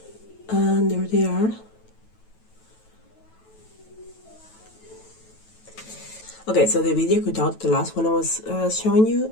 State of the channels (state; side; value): late; right; 9.2 ms